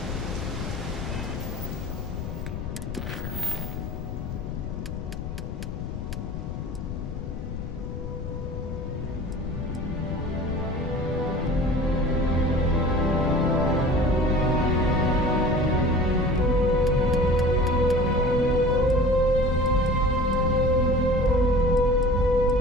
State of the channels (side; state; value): left; noise; rumble, 6 dB below the sound